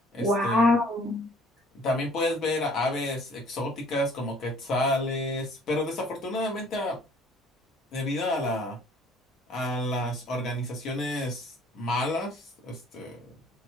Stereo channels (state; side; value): normal; both; correlation 0.56